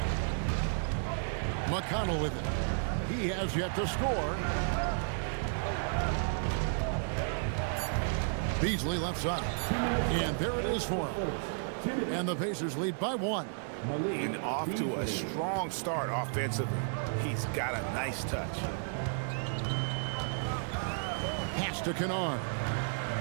McConnell with it. He has yet to score. Beasley left side. And there it is for him. And the Pacers lead by 1. And off to a strong start offensively. He's got a nice touch. Pass to Kennard.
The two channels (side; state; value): left; silent; digital silence